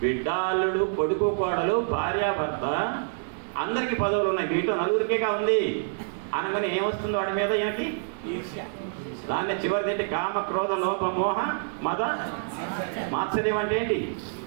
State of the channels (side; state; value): left; silent; digital silence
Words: బిడ్డ, అల్లుడు, కొడుకు, కోడలు, భార్యాభర్త, అందరికీ పదవులు ఉన్నాయి, మీతో నలుగురికేగా ఉంది అనగానే ఏమొస్తుంది వాడి మీద? ఈయనకి దాన్ని చివరిది ఏంటి? కామ, క్రోధ, లోభ, మోహ, మద, మాత్సర్యం అంటే ఏంటి?